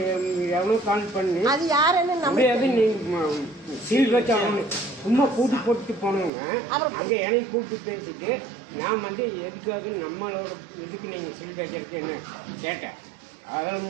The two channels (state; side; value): drops out; left; at 6.3 s